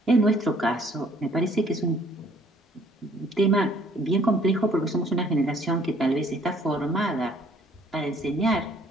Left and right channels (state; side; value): normal; both; correlation 0.60